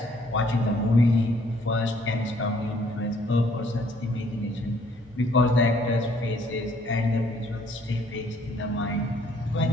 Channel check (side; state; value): both; normal; correlation 0.63